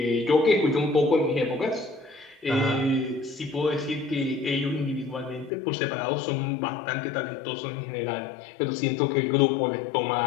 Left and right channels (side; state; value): right; drops out; at 5.5 s